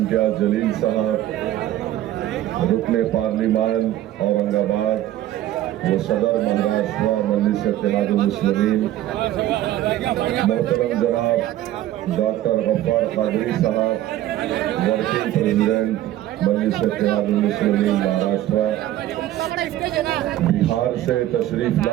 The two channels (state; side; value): quieter; left; 13.7 dB